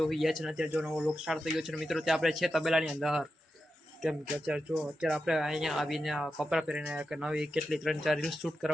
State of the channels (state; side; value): normal; both; correlation 0.89